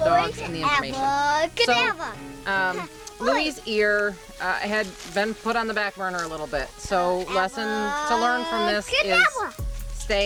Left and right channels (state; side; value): identical; both; correlation 1.00